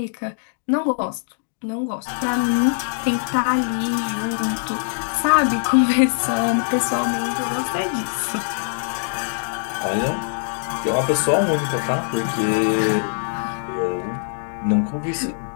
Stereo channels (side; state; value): right; silent; digital silence